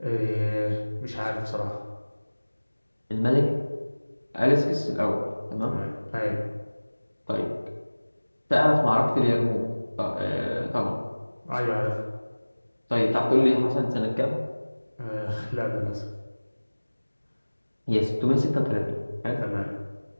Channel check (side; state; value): both; inverted; correlation -1.00